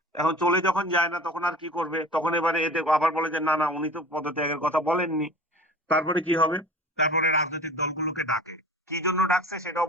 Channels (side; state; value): both; normal; correlation 0.40